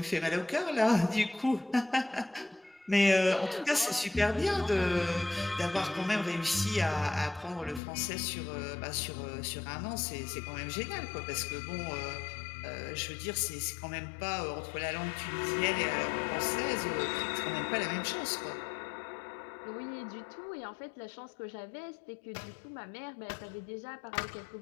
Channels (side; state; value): right; drops out; at 7.8 s